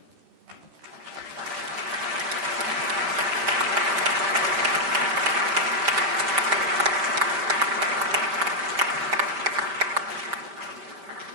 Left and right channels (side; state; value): left; late; 5.1 ms